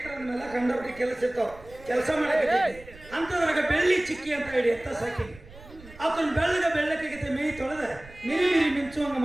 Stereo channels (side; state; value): right; noise; rumble, 20 dB below the sound